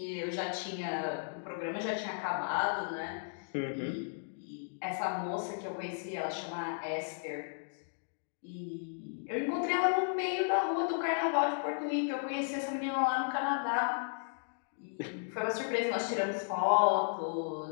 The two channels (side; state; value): right; silent; digital silence